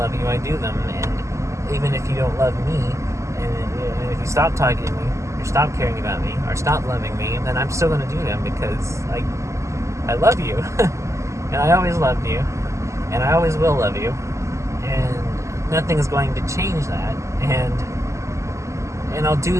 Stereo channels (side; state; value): left; late; 0.14 ms